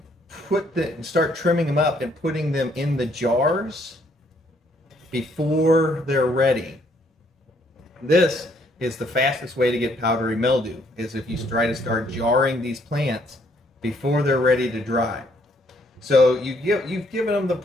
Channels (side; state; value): both; normal; correlation 0.68